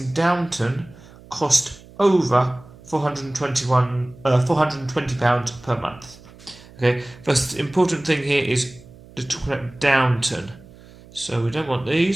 Downton cost over £420 per month? Okay, first important thing here is to talk about Downton. So we don't want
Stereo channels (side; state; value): right; noise; hum, 22 dB below the sound